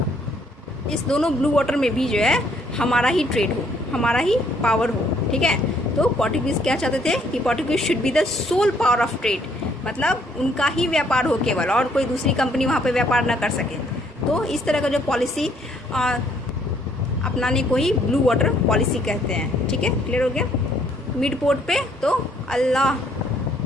दोनों ब्लू वाटर में भी जो है हमारा ही ट्रेड हो, हमारा ही पावर हो। ठीक है? तो पोर्टुगीज़ क्या चाहते थे कि Portuguese should be the sole power of trade, मतलब उनका ही व्यापार हो केवल, और कोई दूसरी कंपनी वहाँ पे व्यापार ना कर सके। तो इस तरह का जो पॉलिसी अपनाने को ही ब्लू वाटर पॉलिसी कहते हैं। ठीक है? क्लियर हो गया? मिड पोर्ट पे तो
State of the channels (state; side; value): normal; both; correlation 0.66